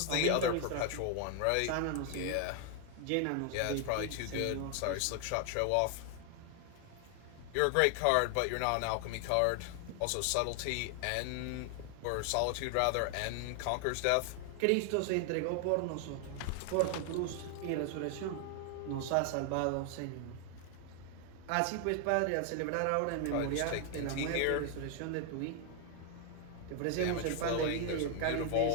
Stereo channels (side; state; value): both; different; correlation 0.00